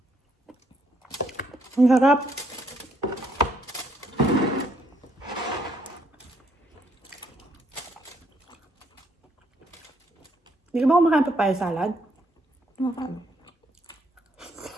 Ang sarap. Hindi ka ba kumakain papaya salad? Makain.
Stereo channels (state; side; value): normal; both; correlation 0.71